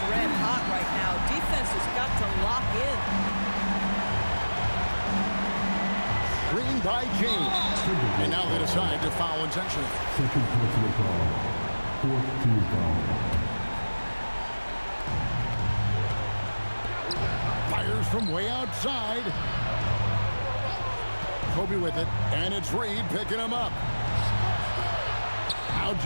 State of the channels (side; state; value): both; inverted; correlation -1.00